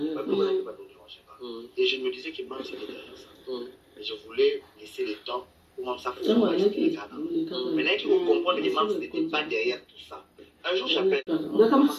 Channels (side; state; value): both; identical; correlation 1.00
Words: et je me disais que Marc c'était derrière ça. Et je voulais laisser le temps comment ça fonctionne. Maintenant, il faut comprendre que Mams n'était pas derrière tout ça. Un jour, j'appelle.